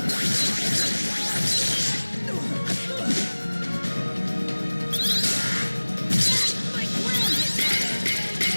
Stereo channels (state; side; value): inverted; both; correlation -1.00